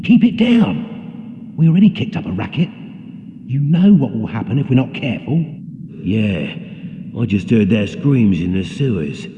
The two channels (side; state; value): both; identical; correlation 1.00